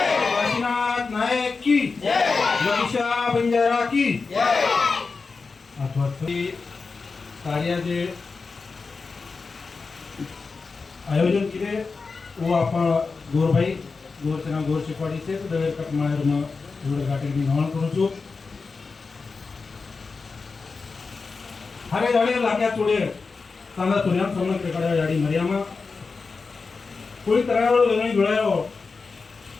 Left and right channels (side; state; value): right; quieter; 4.5 dB